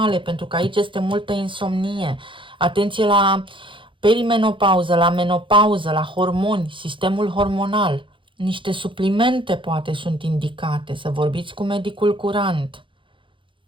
pentru că aici este multă insomnie. Atenție la perimenopauză, la menopauză, la hormoni, sistemul hormonal. Niște suplimente poate sunt indicate, să vorbiți cu medicul curant.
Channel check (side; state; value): left; late; 0.24 ms